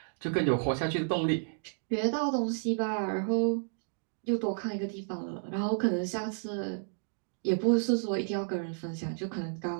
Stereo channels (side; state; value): left; silent; digital silence